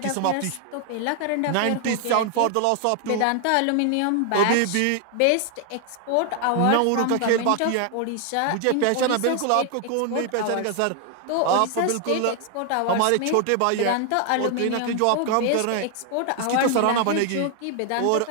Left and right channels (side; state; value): both; different; correlation 0.00